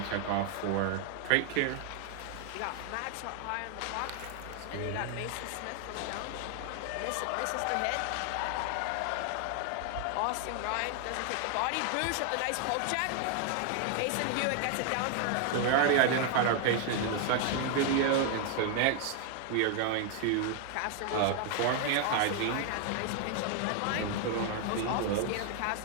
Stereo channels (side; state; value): both; different; correlation 0.00